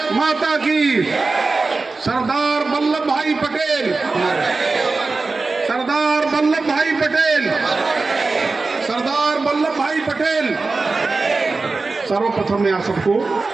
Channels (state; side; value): quieter; left; 3.8 dB